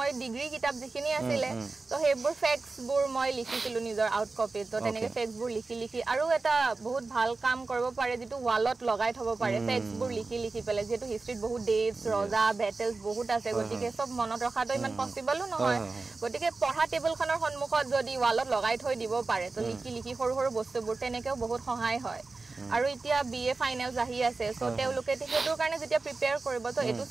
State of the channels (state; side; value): quieter; left; 3.7 dB